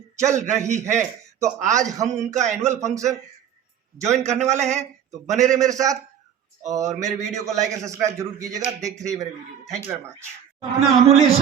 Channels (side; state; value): left; quieter; 9.0 dB